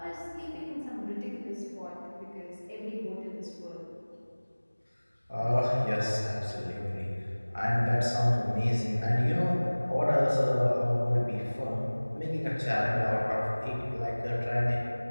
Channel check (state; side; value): inverted; both; correlation -1.00